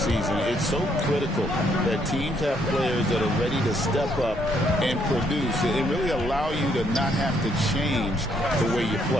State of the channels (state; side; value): normal; both; correlation 0.70